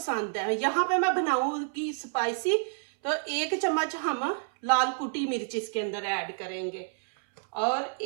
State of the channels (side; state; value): left; silent; 59 dB below the other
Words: है। यहाँ पे मैं बनाऊंगी स्पाइसी, तो 1 चम्मच हम लाल कुटी मिर्च इसके अंदर ऐड करेंगे। और